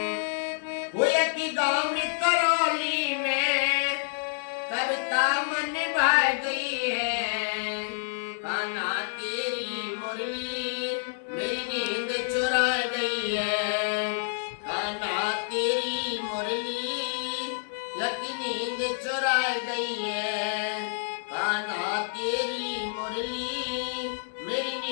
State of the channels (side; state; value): right; silent; 59 dB below the other